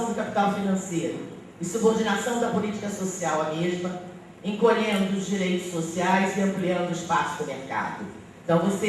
do capital financeiro e subordinação da política social à mesma, encolhendo os direitos sociais e ampliando o espaço do mercado. Então,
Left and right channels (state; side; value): identical; both; correlation 1.00